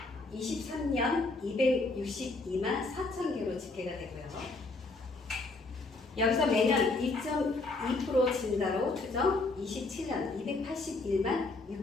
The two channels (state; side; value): quieter; right; 3.4 dB